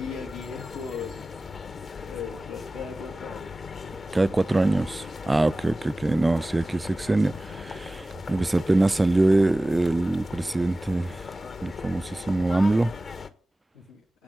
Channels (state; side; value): normal; both; correlation 0.97